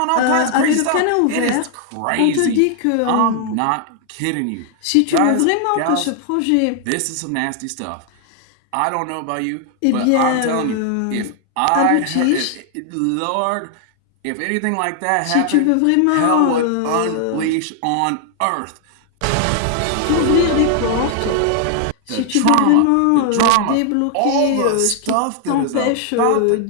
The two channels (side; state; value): both; different; correlation 0.00